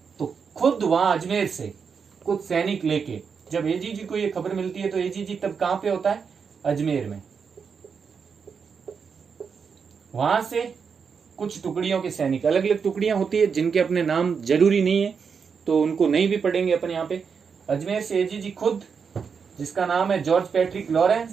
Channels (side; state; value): left; quieter; 6.1 dB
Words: तो खुद वहां अजमेर से कुछ सैनिक लेके जब एजीजी को ये खबर मिलती है, तो एजीजी तब कहां पे होता है? अजमेर में। वहां से कुछ टुकड़ियों के सैनिक, अलग अलग टुकड़ियां होती है जिनके अपने नाम जरूरी नहीं है, तो उनको नहीं भी पढ़ेंगे अपन यहाँ पे। अजमेर से एजीजी खुद, जिसका नाम है जॉर्ज पैट्रिक